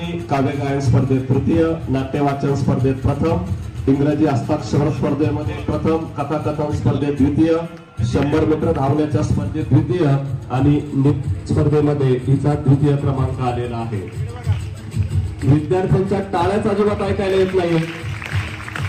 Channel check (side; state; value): both; identical; correlation 1.00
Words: काव्य गायन स्पर्धेत तृतीय, नाट्यवाचन स्पर्धेत प्रथम, इंग्रजी हस्ताक्षर स्पर्धेमध्ये प्रथम, कथाकथन स्पर्धेत द्वितीय, 100 मीटर धावण्याच्या स्पर्धेत द्वितीय आणि स्पर्धेमध्ये हिचा द्वितीय क्रमांक आलेला आहे. विद्यार्थ्यांच्या टाळ्याच अजिबात ऐकायला येत नाही.